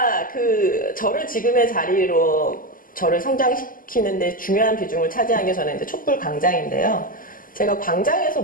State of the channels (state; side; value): late; right; 0.41 ms